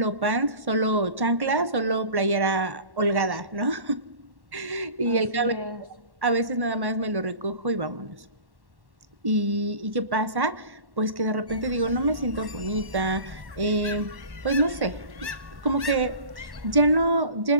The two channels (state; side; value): late; left; 1.1 ms